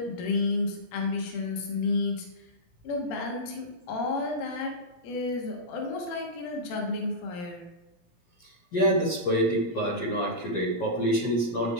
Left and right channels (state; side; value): late; right; 17 ms